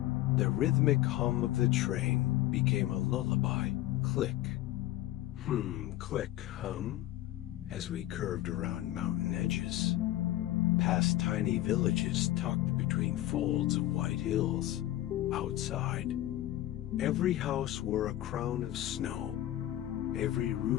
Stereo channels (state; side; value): quieter; right; 14.7 dB